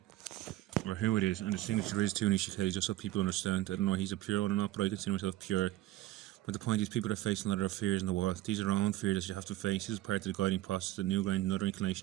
or who it is. And the signature is to Nisha Kelly, just so people understand. I don't know if he's a pure one or not, but I consider myself pure. But the point is, people are facing a lot of fears in the world. These are our own fears that you have to face. This is part of the guiding process that New Ground and other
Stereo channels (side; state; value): left; quieter; 15.5 dB